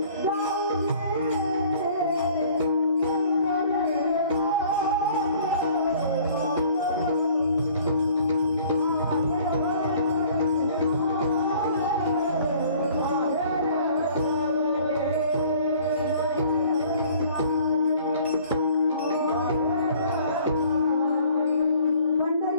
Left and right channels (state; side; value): inverted; both; correlation -0.54